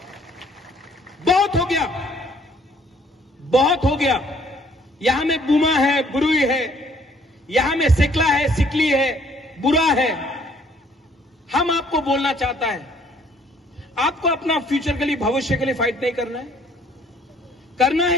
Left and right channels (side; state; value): both; normal; correlation 0.61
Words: बहुत हो गया, बहुत हो गया। यहां में बुमा है, बुरुई है, यहां में सिकला है, सिकली है, बुरा है। हम आपको बोलना चाहता है, आपको अपना फ्यूचर के लिए, भविष्य के लिए फाइट नहीं करना है? करना